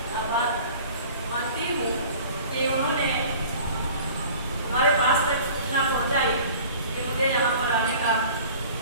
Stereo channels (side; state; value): both; inverted; correlation -0.45